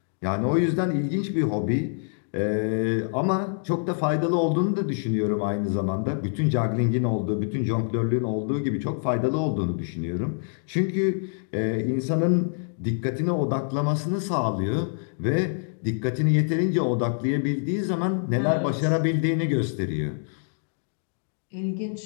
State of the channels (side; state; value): right; silent; digital silence